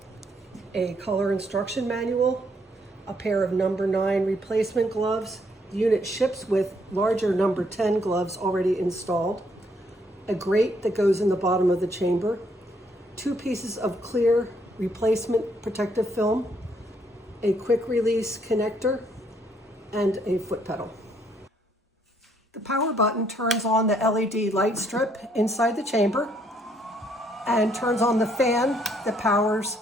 a color instruction manual, a pair of number 9 replacement gloves. The unit ships with larger number 10 gloves already installed, a grate that goes in the bottom of the chamber, 2 pieces of clear replacement protective film, a quick release connector, and a foot pedal. The power button turns on the LED light strip inside the chamber and turns on the fan that powers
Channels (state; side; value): normal; both; correlation 0.70